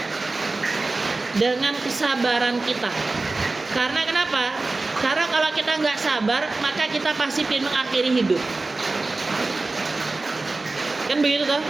dengan kesabaran kita. Karena kenapa? Karena kalau kita nggak sabar, maka kita pasti ingin mengakhiri hidup. Kan begitu toh?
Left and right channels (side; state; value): left; quieter; 3.4 dB